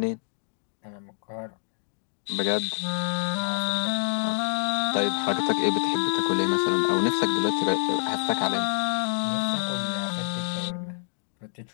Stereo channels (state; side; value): silent; right; digital silence